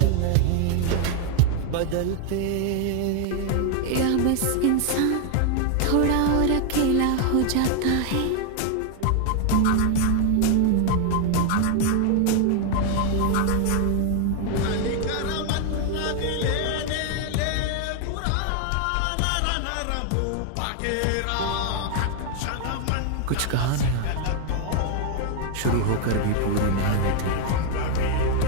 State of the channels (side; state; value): both; different; correlation 0.00